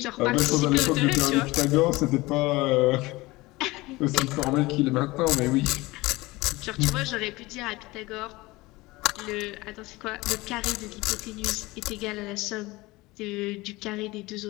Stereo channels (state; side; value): quieter; right; 21.1 dB